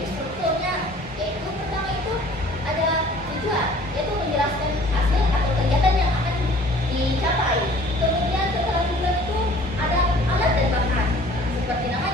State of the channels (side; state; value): both; normal; correlation 0.51